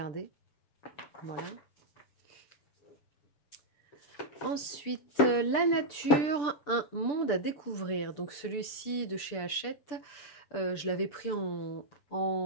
Voilà. Ensuite, La nature, un monde à découvrir. Donc celui-ci de chez Hachette, je l'avais pris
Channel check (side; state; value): right; late; 6.8 ms